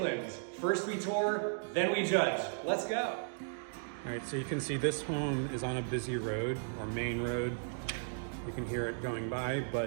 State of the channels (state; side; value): silent; left; digital silence